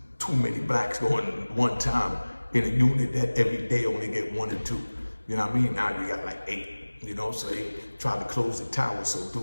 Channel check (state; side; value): inverted; both; correlation -1.00